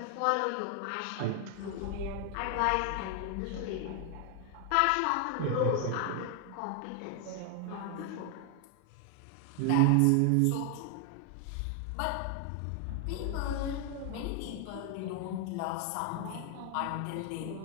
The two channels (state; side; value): different; both; correlation 0.00